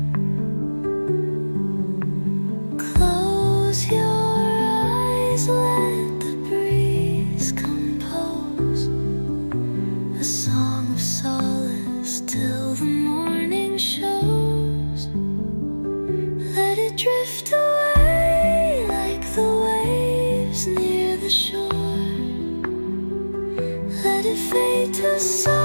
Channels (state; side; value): inverted; both; correlation -1.00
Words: Close your eyes, let the breeze compose a song of solace till the morning shows. Let it drift away like the waves near the shore. Let it fade to